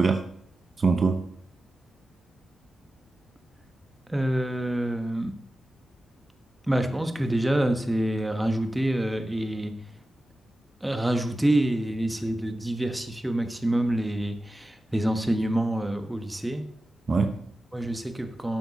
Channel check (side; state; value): both; normal; correlation 0.93